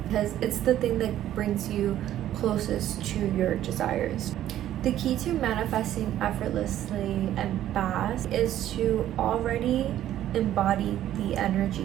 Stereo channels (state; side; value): quieter; left; 12.3 dB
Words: because it's the thing that brings you closest to your desires. The key to manifesting effortlessly and fast is to already embody the